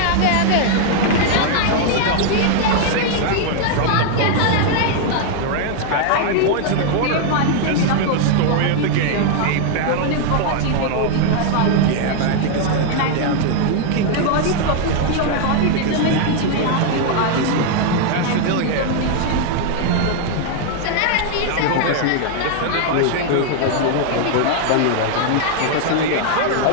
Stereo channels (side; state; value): both; different; correlation 0.00